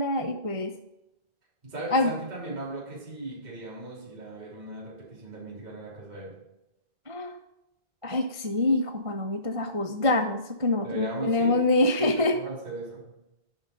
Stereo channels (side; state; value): left; late; 1.5 ms